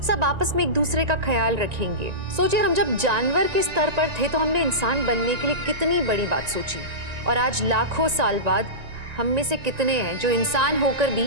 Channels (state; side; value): late; left; 1.9 ms